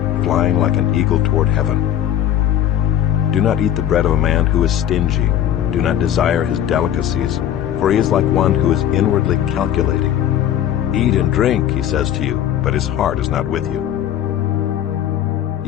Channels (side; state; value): right; quieter; 11.0 dB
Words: flying like an eagle toward heaven. Do not eat the bread of a man who is stingy. Do not desire his delicacies, for he is like one who is inwardly calculating. Eat and drink, he says to you, but his heart is not with you.